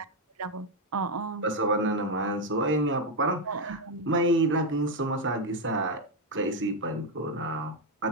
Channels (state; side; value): normal; both; correlation 0.03